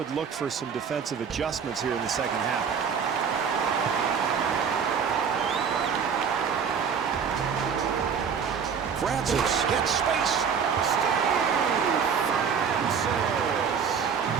look for some defensive adjustments here in the second half. Francis gets space.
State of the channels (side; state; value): left; quieter; 6.7 dB